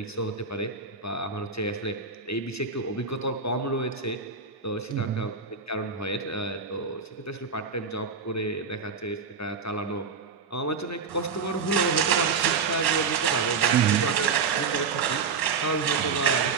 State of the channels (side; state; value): left; quieter; 5.3 dB